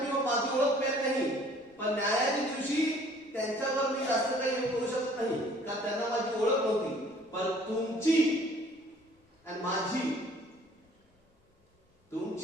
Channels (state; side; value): normal; both; correlation 0.55